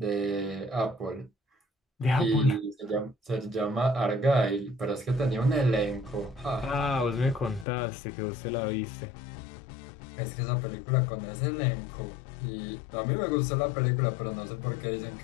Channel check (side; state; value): right; drops out; at 7.7 s